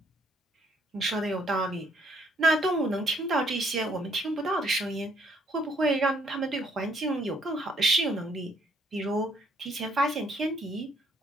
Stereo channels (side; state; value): both; normal; correlation 0.67